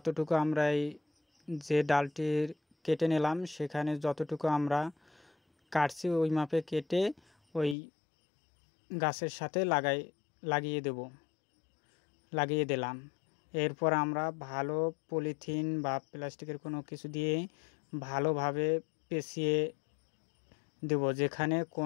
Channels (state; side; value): drops out; right; at 7.8 s